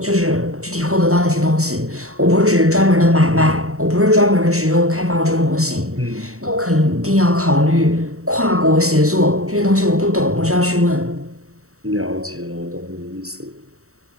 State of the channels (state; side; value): late; left; 0.64 ms